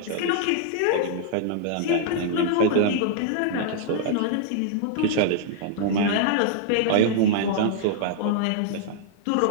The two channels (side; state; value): both; different; correlation -0.01